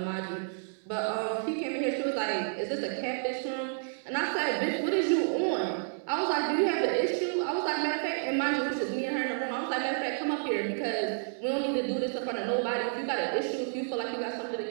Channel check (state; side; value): silent; left; digital silence